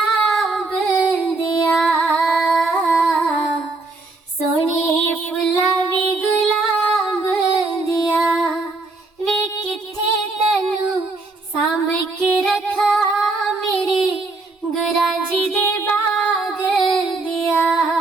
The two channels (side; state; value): left; quieter; 3.4 dB